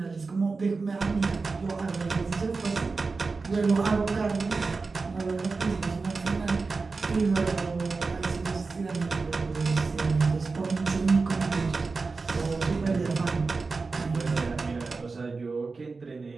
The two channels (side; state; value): left; quieter; 4.2 dB